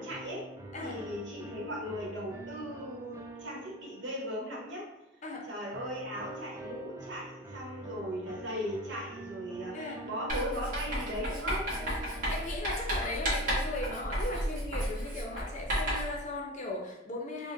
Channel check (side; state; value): both; normal; correlation 0.30